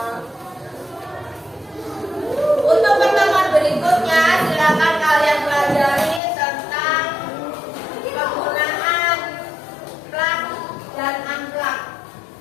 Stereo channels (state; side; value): drops out; right; at 6.2 s